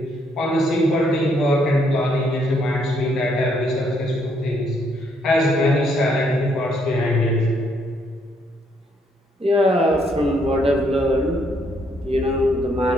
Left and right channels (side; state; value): both; normal; correlation 0.71